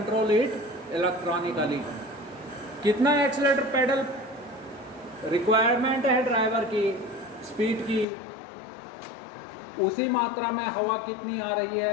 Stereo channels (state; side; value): drops out; right; at 8.1 s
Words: it electronically. कितना एक्सीलरेटर पेडल रिक्वायरमेंट है ड्राइवर की, स्पीड की, उसी मात्रा में हवा कितनी आ रही